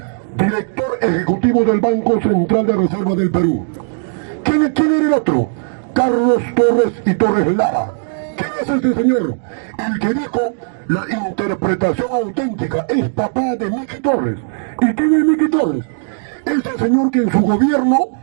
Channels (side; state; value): left; silent; digital silence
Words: director ejecutivo del Banco Central de Reserva del Perú. ¿Quién era el otro? Carlos Torres y Torres Lara. ¿Quién es este señor? El que dijo la interpretación auténtica es papá de Miki Torres. ¿Y quién es Miki Torres? Ese señor que en su gobierno